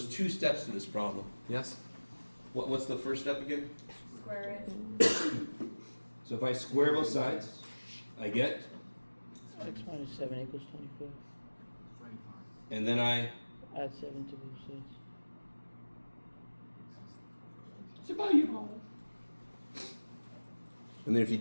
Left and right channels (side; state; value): both; inverted; correlation -1.00